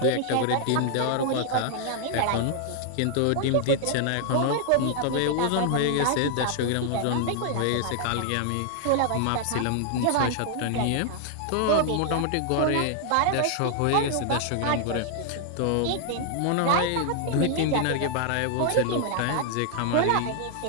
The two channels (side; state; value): both; different; correlation -0.01